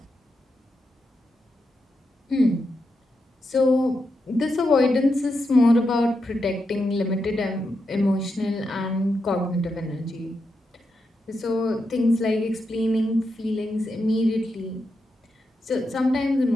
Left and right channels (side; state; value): both; normal; correlation 0.85